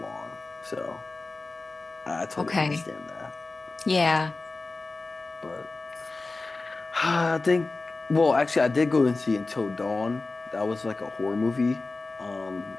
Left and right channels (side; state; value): right; quieter; 3.5 dB